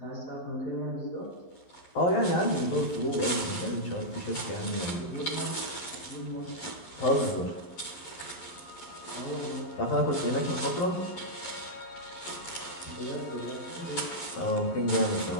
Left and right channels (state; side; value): late; right; 11 ms